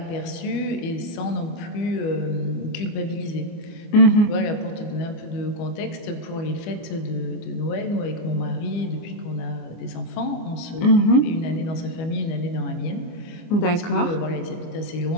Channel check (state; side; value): late; right; 25 ms